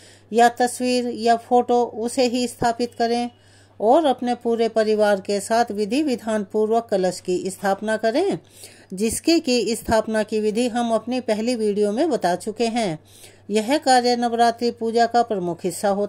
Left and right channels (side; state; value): both; identical; correlation 1.00